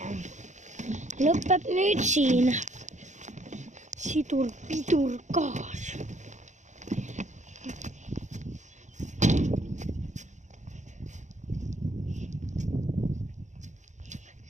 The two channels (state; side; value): late; left; 0.35 ms